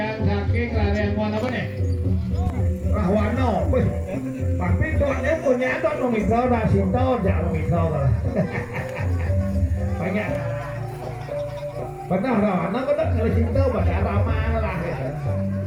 saking larian mana apa nih Rahwano tapi tuannya punya tuh nomikau dah sinto jangan nomikau lah banyak Benar dong, anak benar kalau cinta pada ramah lah ya.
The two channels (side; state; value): both; identical; correlation 1.00